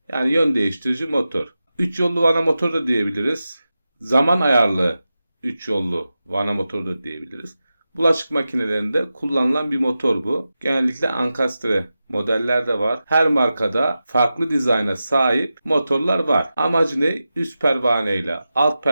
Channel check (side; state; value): both; inverted; correlation -0.92